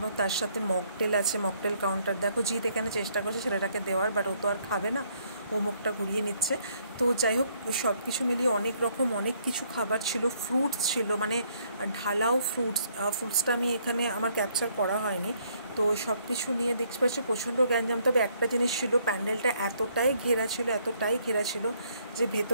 তার সাথে মকটেল আছে, মকটেল কাউন্টার। দেখো জিৎ এখানে চেষ্টা করছে ছেলেটাকে দেওয়ার, বাট ও তো আর খাবে না, ও মুখটা ঘুরিয়ে নিচ্ছে। তো যাই হোক, সব কিছু মিলিয়ে অনেক রকম অনেক কিছু খাবার ছিল। ফ্রুটস ছিল, মানে ঢালাও ফ্রুটসটা আমি এখানে আমার ক্যাপচার করা হয়নি। তো সব কিছু নিয়ে দেখতে পাচ্ছি প্রচণ্ড গ্যাঞ্জাম। তবে একটা জিনিস ছিল, প্যান্ডেলটা এতটাই ঘেরা ছিল যে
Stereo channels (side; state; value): both; inverted; correlation -0.68